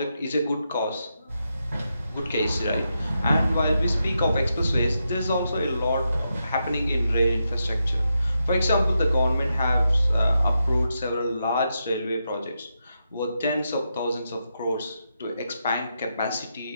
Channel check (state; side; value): inverted; both; correlation -0.85